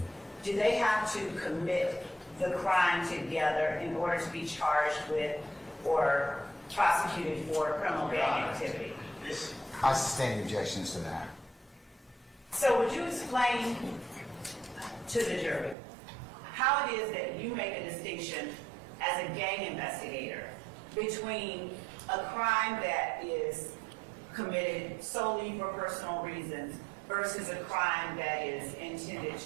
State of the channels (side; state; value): left; drops out; at 15.8 s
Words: do they have to commit the crime together in order to be charged with or prosecuted for criminal gang activity? I sustain objections to that. So would you explain to the jury how it is that you make a distinction as a gang investigator between a crime that is committed solely for personal reasons versus a crime that is intended